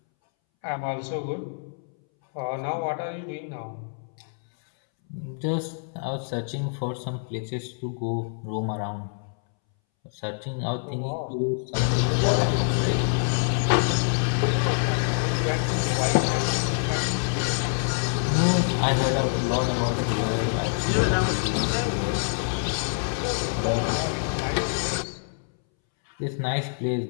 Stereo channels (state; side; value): silent; right; 61 dB below the other